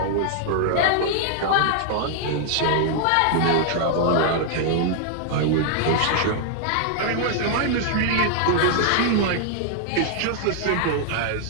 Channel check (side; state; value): both; different; correlation 0.00